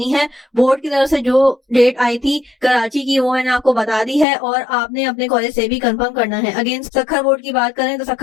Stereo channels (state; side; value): drops out; right; at 4.2 s